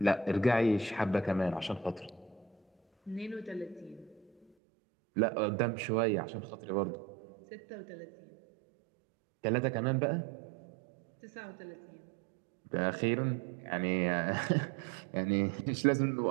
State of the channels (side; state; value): left; drops out; at 4.5 s